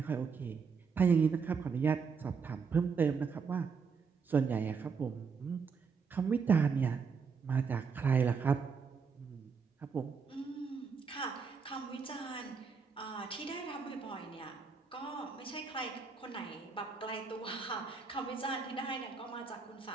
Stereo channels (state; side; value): quieter; left; 5.5 dB